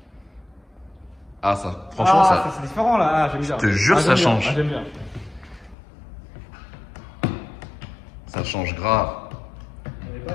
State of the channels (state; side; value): drops out; right; at 5.8 s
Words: Ah, ça, franchement, ça. C'est différent là, j'aime bien. Je te jure, ça change. J'aime bien. Ça change grave. On n'avait pas